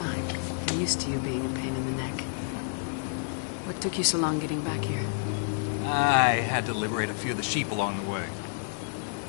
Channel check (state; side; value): silent; right; digital silence